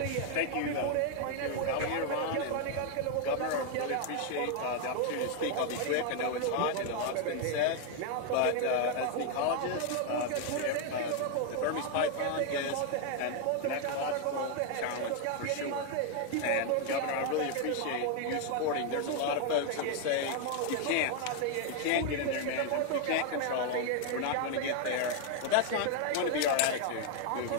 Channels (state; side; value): different; both; correlation 0.01